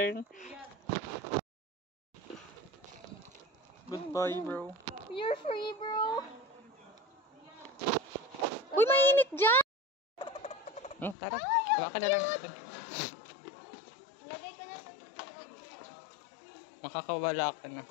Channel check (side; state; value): right; drops out; at 11.2 s